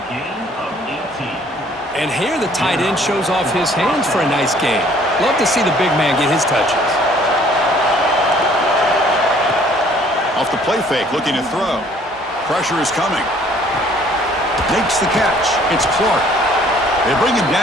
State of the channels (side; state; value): both; normal; correlation 0.58